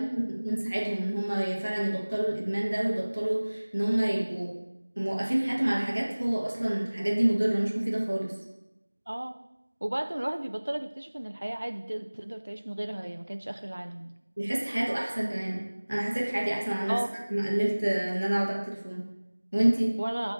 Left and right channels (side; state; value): both; inverted; correlation -1.00